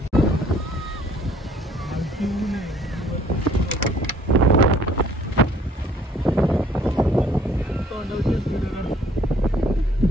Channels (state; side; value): normal; both; correlation 0.59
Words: खालती ऊन आहे. तोंडावकेच व्हिडिओ करतो.